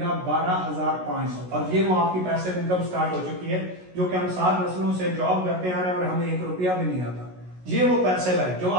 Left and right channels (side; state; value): left; late; 16 ms